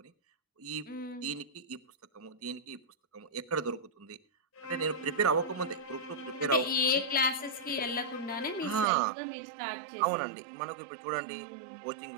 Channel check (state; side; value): drops out; left; at 8.8 s